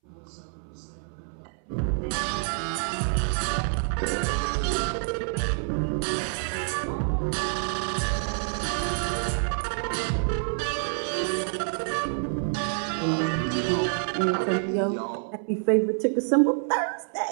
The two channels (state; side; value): silent; left; 60 dB below the other